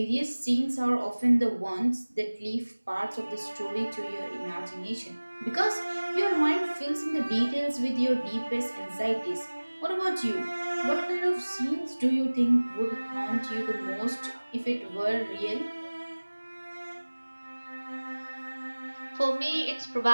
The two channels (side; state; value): both; inverted; correlation -1.00